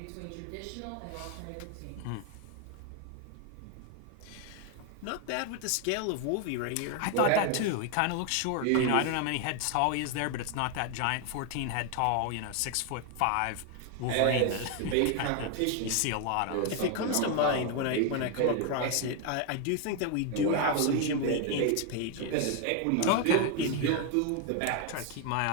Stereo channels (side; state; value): both; different; correlation 0.01